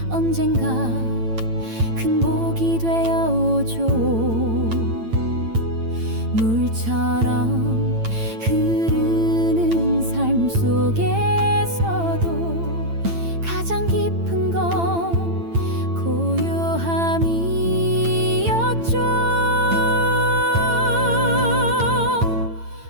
언젠가 큰 복이 되어오죠. 물처럼 흐르는 삶 속에서도 가장 깊은 건 고요함이었죠.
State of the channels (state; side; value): late; left; 8.9 ms